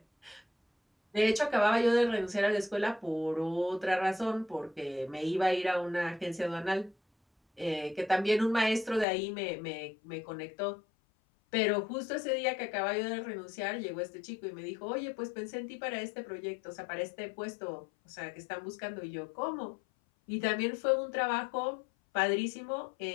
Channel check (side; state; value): right; drops out; at 9.1 s